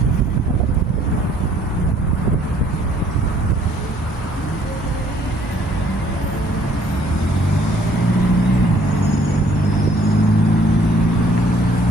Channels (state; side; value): normal; both; correlation 0.61